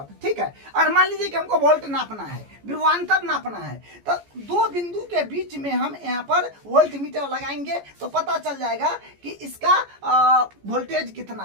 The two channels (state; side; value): late; left; 14 ms